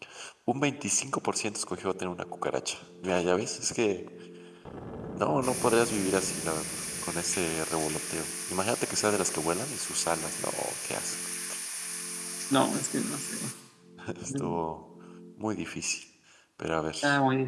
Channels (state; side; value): identical; both; correlation 1.00